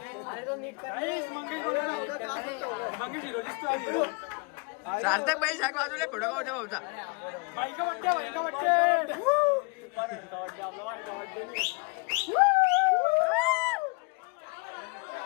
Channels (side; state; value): right; quieter; 31.2 dB